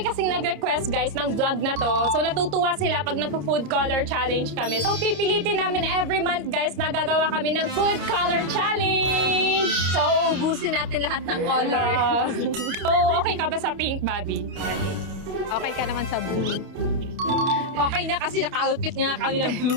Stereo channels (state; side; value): late; left; 29 ms